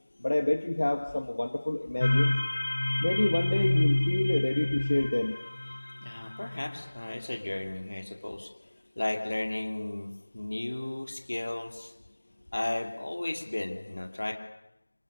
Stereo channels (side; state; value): both; inverted; correlation -1.00